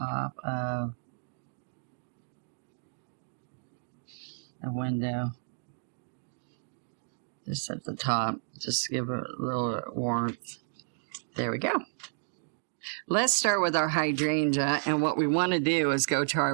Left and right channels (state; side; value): silent; left; digital silence